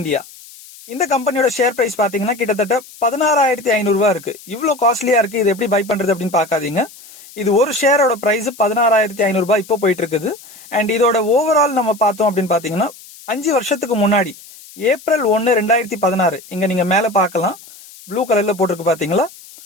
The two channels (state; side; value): noise; left; hiss, 20 dB below the sound